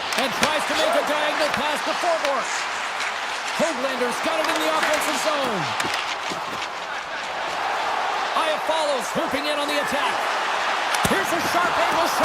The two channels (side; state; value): both; identical; correlation 1.00